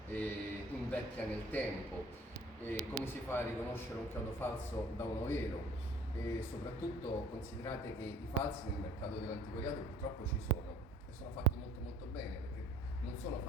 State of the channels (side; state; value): both; normal; correlation 0.52